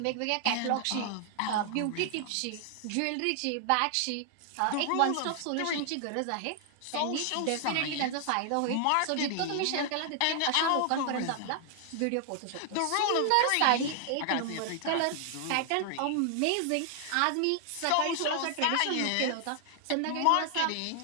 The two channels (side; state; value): both; different; correlation 0.00